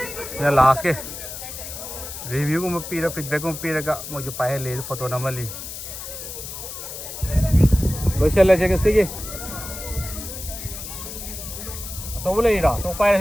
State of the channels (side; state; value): left; noise; hiss, 9 dB below the sound